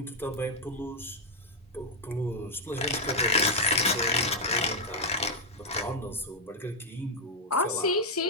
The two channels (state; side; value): normal; both; correlation -0.02